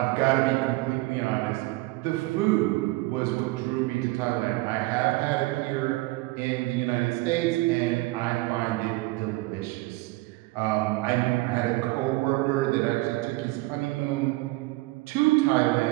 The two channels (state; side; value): quieter; left; 21.5 dB